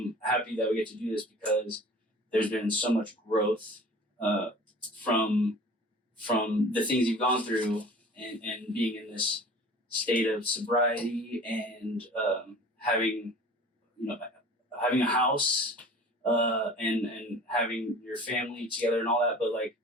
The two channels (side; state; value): both; normal; correlation 0.43